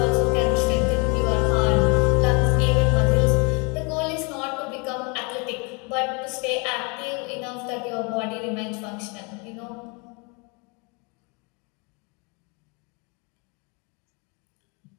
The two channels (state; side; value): quieter; right; 31.9 dB